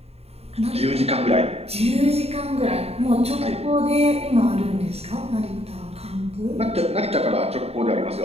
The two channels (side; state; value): left; late; 0.30 ms